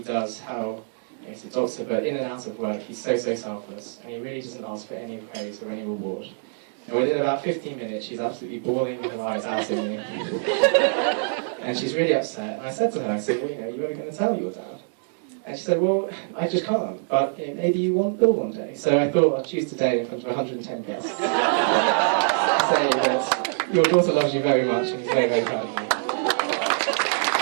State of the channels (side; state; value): left; silent; 62 dB below the other